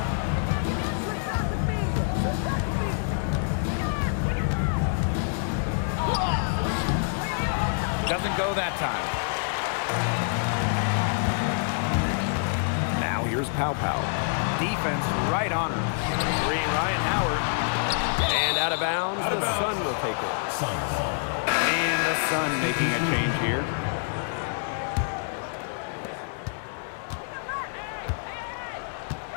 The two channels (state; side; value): silent; right; digital silence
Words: Doesn't go that time. Now here's Pow Pow. Defense right on her. 3, Ryan Howard. And out of bounds, the Sun will take it. Sun ball. And the Sun making a change here.